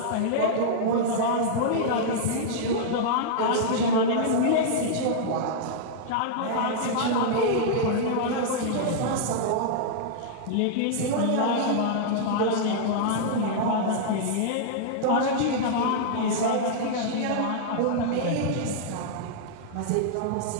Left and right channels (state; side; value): different; both; correlation -0.01